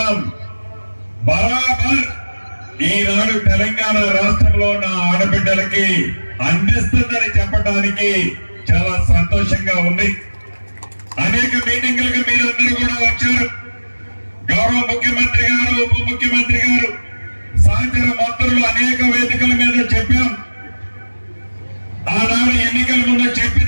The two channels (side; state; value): both; inverted; correlation -1.00